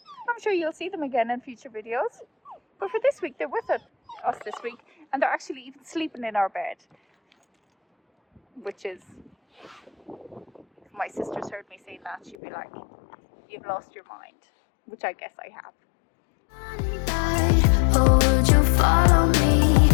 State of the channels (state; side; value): drops out; right; at 12.4 s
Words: I'm sure you'll see them again in future videos. But for this week, they're with us this week, and they're actually even sleeping in our bed. Which is, if my sisters heard me saying that, she'd be like, you've lost your mind. Which I guess I have. oh, would you follow me?